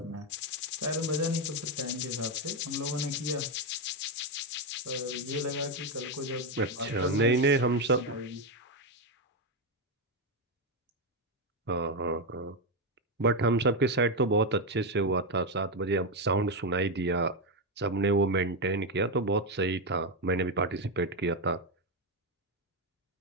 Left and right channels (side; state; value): both; normal; correlation 0.07